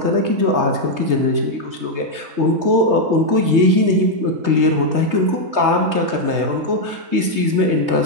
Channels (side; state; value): left; late; 3.2 ms